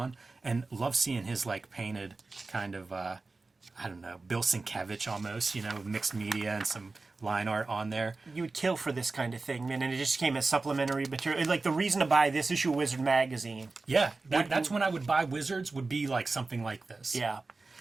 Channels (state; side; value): quieter; left; 3.6 dB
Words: And love seeing his like painted kind of, I don't know, Bill Sienkiewicz almost, mixed media and some line art on there. You would kill for this kind of thing, man, and it just came as supplementary material. Like, the reason to buy this issue of Wizard magazine. Yeah, that's when I would buy Wizards, would be like something like this. Yeah.